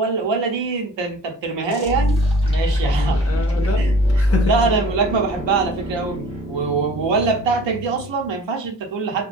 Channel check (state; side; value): normal; both; correlation 0.44